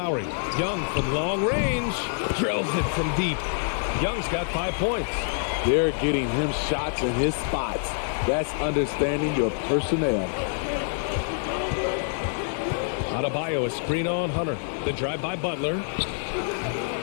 Young from long range. Drills it from deep. Young's got 5 points. They're getting him shots in his spots. That's understanding your personnel. Adebayo, a screen on Hunter. The drive by Butler.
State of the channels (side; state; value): right; silent; digital silence